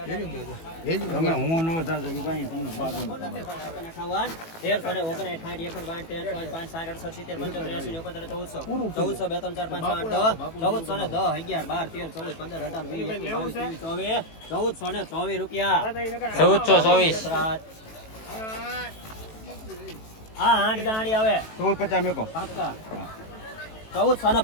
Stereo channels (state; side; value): late; right; 18 ms